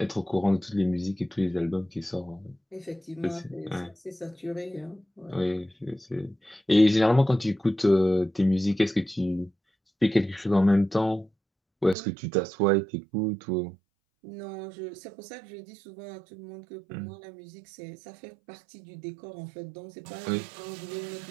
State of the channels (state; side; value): drops out; left; at 12.0 s